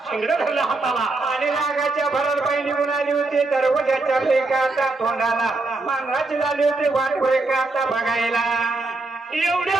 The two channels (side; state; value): left; quieter; 3.3 dB